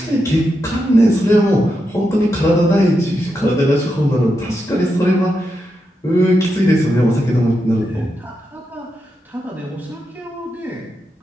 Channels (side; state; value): both; normal; correlation 0.86